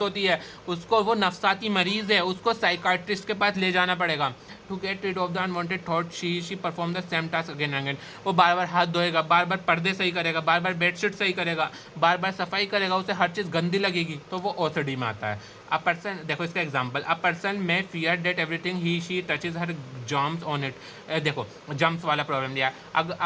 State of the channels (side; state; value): both; identical; correlation 1.00